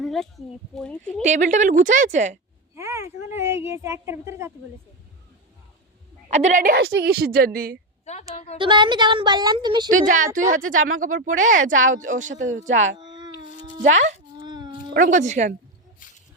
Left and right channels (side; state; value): both; normal; correlation 0.11